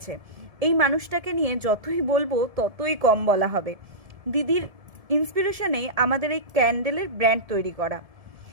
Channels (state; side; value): late; left; 1.7 ms